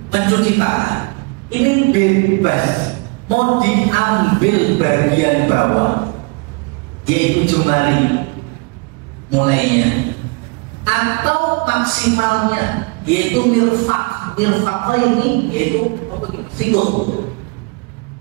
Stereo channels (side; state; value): left; quieter; 28.9 dB